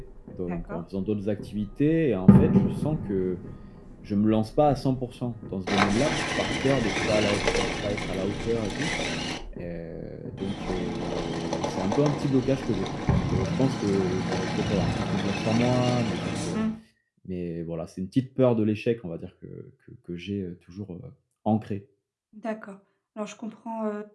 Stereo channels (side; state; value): both; identical; correlation 1.00